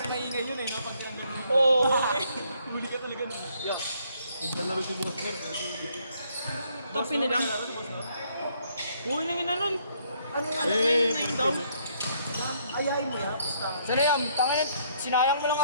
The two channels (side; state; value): both; inverted; correlation -0.67